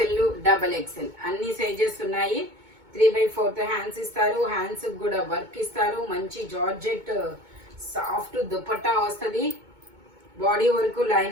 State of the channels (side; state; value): left; late; 2.2 ms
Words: డబల్ ఎక్స్ఎల్ అన్ని సైజెస్ ఉన్నాయి. 3/4 హ్యాండ్స్ ఇస్తారు. హ్యాండ్స్ కూడా వర్క్ ఇస్తారు. మంచి జార్జెట్ సాఫ్ట్ దుపట్టా వస్తుంది. బాడీ వరకు